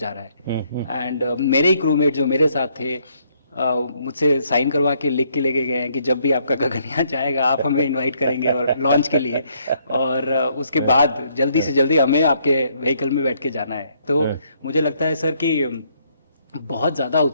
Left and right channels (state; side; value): inverted; both; correlation -0.70